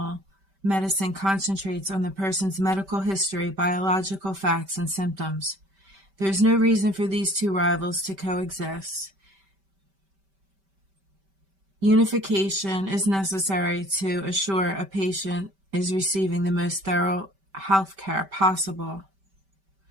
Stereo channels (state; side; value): late; left; 5.2 ms